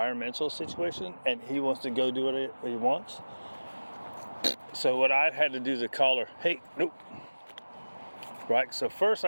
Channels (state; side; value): inverted; both; correlation -1.00